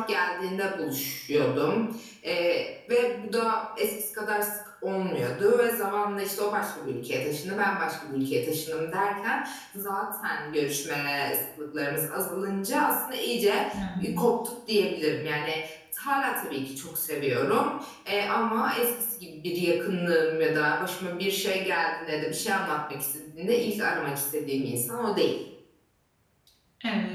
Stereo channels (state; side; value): identical; both; correlation 1.00